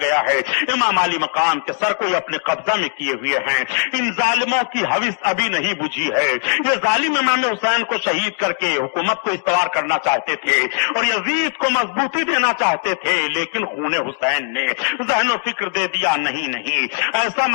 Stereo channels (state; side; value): silent; right; digital silence